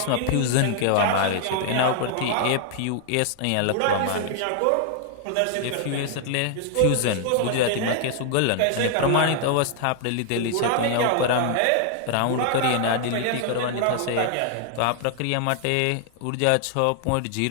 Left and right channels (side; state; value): both; different; correlation 0.00